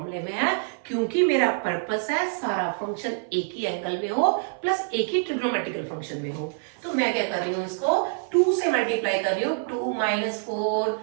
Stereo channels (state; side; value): silent; left; 56 dB below the other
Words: में है, क्योंकि मेरा पर्पस है सारा फंक्शन एक ही एंगल में हो प्लस एक ही ट्रिग्नोमेट्रिकल फंक्शन में हो। तो मैं क्या कर रही हूँ, इसको 2 से मल्टीप्लाई कर रही हूँ, 2 - 4